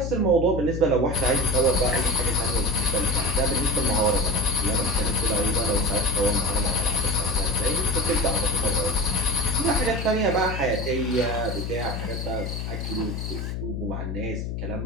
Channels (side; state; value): left; noise; hum, 4 dB below the sound